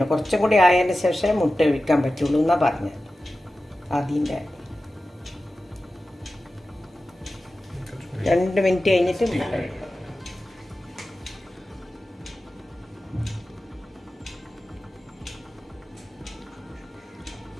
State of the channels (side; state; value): both; normal; correlation 0.94